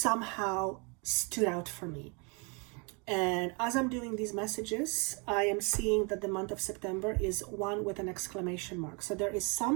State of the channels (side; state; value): left; quieter; 33.0 dB